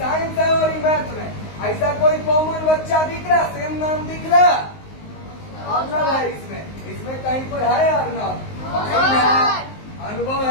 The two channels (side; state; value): right; late; 19 ms